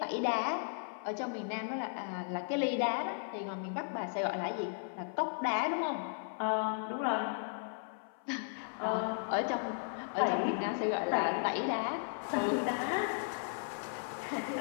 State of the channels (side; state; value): right; silent; 54 dB below the other